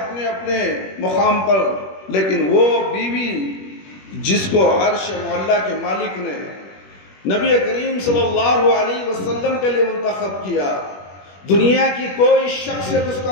اپنے مقام پر، لیکن وہ بیوی جس کو عرش معلیٰ کے مالک نے نبی کریم صلی اللہ علیہ وسلم کے لیے منتخب کیا، دنیا کی کوئی شخصیت اس کا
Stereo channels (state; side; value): late; right; 21 ms